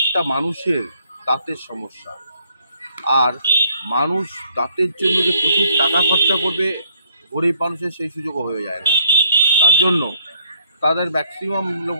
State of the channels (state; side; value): inverted; both; correlation -0.67